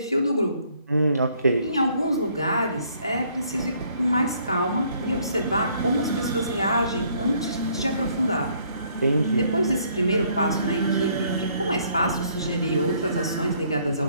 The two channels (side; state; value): both; inverted; correlation -0.65